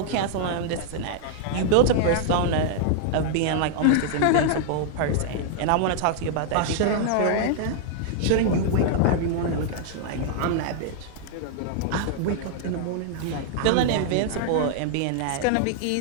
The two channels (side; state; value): both; different; correlation -0.01